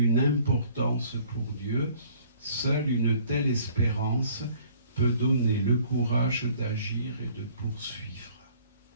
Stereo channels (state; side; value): inverted; both; correlation -0.56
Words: importance pour Dieu. Seule une telle espérance peut donner le courage d'agir et de poursuivre.